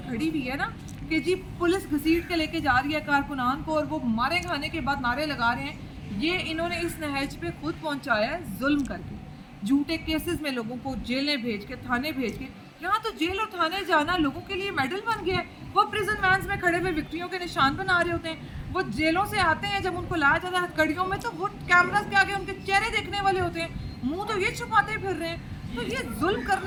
खड़ी हुई है ना कि जी पुलिस घसीट के लेके जा रही है कारकुनान को और वो मारे खाने के बाद नारे लगा रहे हैं, ये इन्होंने इस नहज पे खुद पहुंचाया है जुल्म करके। झूठे केसेस में लोगों को जेलें भेज के, थाने भेज के, यहाँ तो जेल और थाने जाना लोगों के लिए मेडल बन गया है। वो प्रिजन वैन्स में खड़े हुए विक्टियों के निशान बना रहे होते हैं, वो जेलों से आते हैं, जब उनको लाया जाता है हथकड़ियों में तो वो कैमरास के आगे उनके चेहरे देखने वाले होते हैं, मुंह तो ये छुपाते फिर रहे हैं। तो ये जुल्म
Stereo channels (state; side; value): identical; both; correlation 1.00